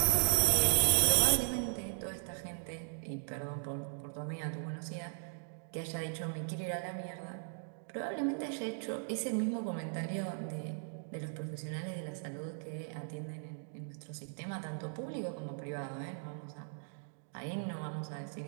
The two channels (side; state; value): left; silent; digital silence